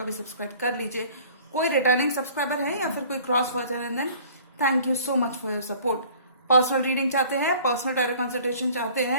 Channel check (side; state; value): both; inverted; correlation -0.51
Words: भी सब्सक्राइब कर लीजिए। कोई रिटर्निंग सब्सक्राइबर है या फिर कोई क्रॉस वॉचर है, then thank you so much for your support. Personal reading चाहते हैं, पर्सनल टैरो कंसल्टेशन चाहते